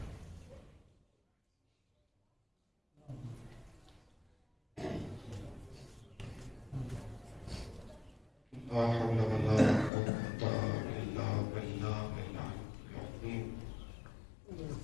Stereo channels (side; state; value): right; drops out; at 9.9 s